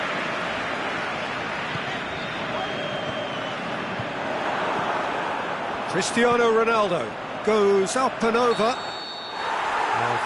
Cristiano Ronaldo goes up and over. Now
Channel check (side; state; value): both; identical; correlation 1.00